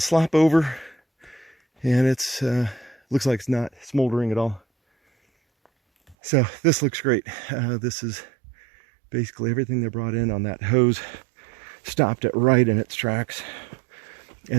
over, and it's looks like it's not smoldering at all. So this looks great. This is basically everything they brought in on that hose. Stopped it right in its tracks.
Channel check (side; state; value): left; drops out; at 6.2 s